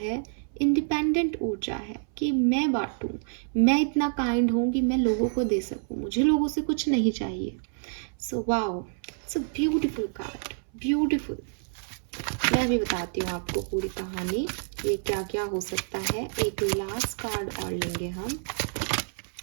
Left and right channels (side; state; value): left; silent; 58 dB below the other